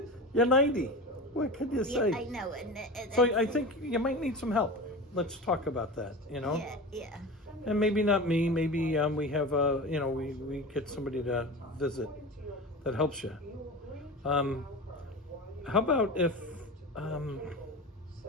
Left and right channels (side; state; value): both; normal; correlation 0.29